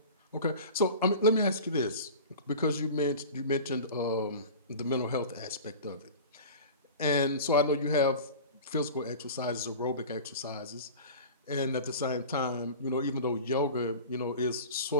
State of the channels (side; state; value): both; inverted; correlation -0.36